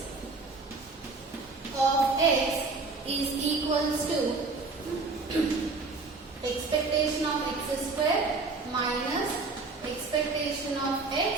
of x is equals to expectation of x square minus expectation of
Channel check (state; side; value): quieter; left; 3.9 dB